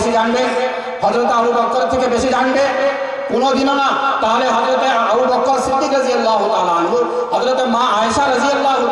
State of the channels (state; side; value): identical; both; correlation 1.00